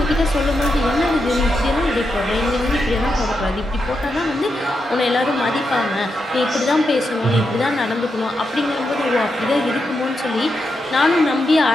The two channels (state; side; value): normal; both; correlation 0.85